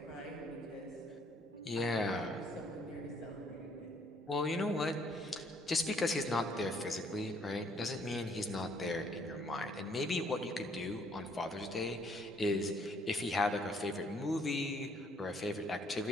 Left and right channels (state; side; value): normal; both; correlation 0.65